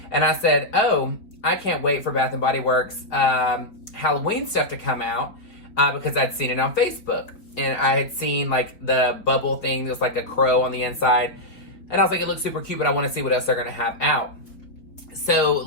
and I said, oh, I can't wait for Bath & Body Works Halloween stuff to come out because I'd seen it on Facebook. And I had seen, like, the bubble thing. There's, like, a crow on the inside. And I was like, it looks super cute, but I want to see what else they're going to have out. So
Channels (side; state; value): right; late; 4.5 ms